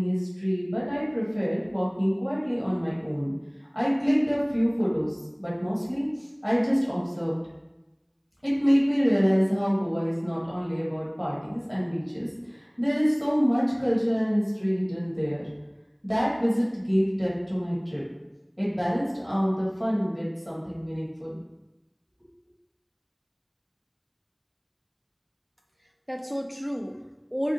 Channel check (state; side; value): identical; both; correlation 1.00